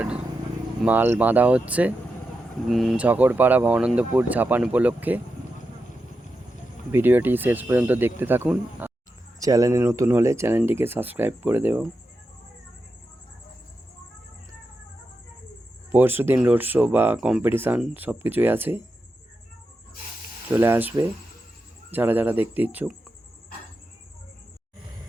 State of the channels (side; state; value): both; normal; correlation 0.88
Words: মাল বাঁধা হচ্ছে ঝকড়পাড়া ভবানন্দপুর ঝাপান উপলক্ষে। ভিডিওটি শেষ পর্যন্ত দেখতে থাকুন। চ্যানেলে নতুন হলে চ্যানেলটিকে সাবস্ক্রাইব করে দেব। পরশু দিন রোড শো বা কম্পিটিশান সব কিছুই আছে, চলে আসবে যারা যারা দেখতে ইচ্ছুক।